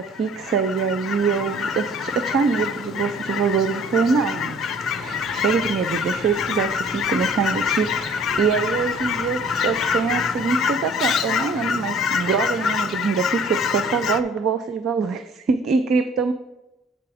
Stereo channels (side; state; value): both; normal; correlation 0.52